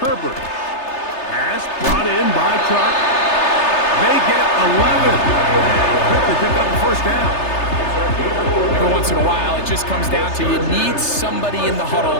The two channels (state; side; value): late; right; 3.3 ms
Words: Pass brought in by Chark. They get 11. Quickly pick up the 1st down. Every once in a while, it just comes down to you need somebody in the